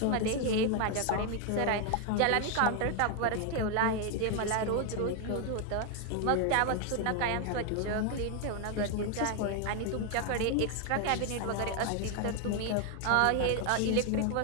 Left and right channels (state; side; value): different; both; correlation 0.01